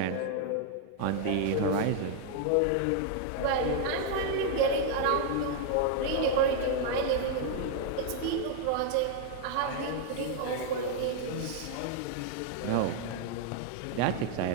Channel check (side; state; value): both; different; correlation 0.00